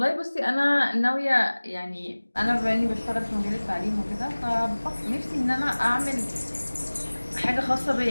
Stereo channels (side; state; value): both; inverted; correlation -1.00